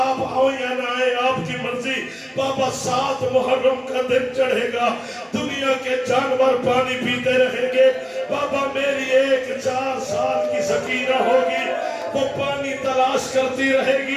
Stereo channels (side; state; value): both; identical; correlation 1.00